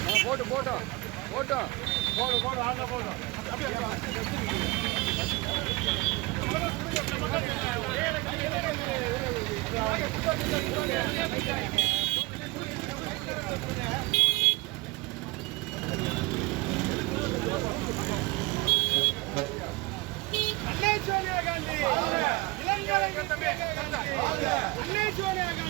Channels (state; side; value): quieter; left; 22.8 dB